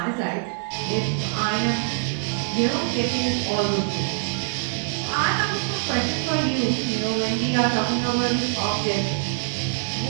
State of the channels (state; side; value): silent; left; digital silence